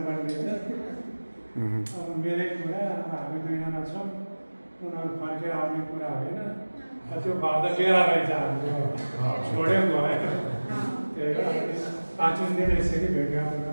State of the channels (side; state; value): both; inverted; correlation -1.00